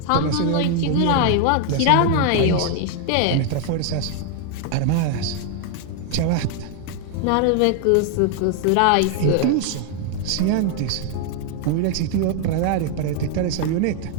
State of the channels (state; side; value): different; both; correlation 0.00